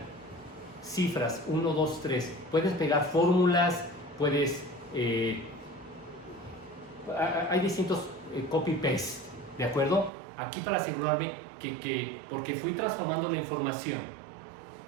cifras 1, 2, 3. Puedes pegar fórmulas, puedes hay distintos copy paste, ¿de acuerdo? Aquí para asegurarme porque fui transformando la información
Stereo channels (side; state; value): left; drops out; at 10.1 s